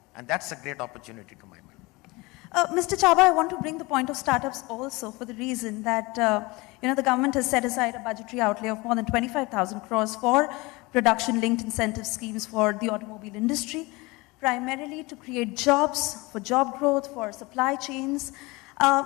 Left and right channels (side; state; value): right; quieter; 23.8 dB